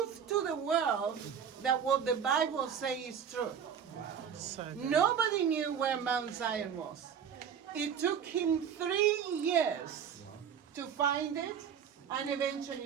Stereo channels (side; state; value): left; quieter; 7.9 dB